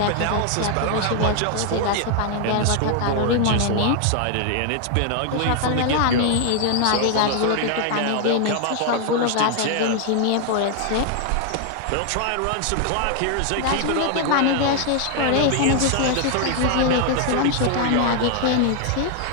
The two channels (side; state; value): both; different; correlation 0.00